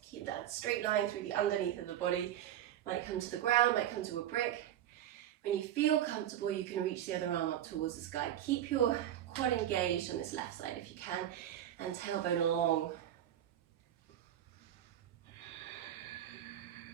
Keep that straight line through the underneath of the body. Might come to the ground, might come to a brick. When you feel comfortable, you can reach the other arm up towards the sky. Keep your quad engaged on this left side if you can, and tailbone long.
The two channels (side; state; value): left; quieter; 11.5 dB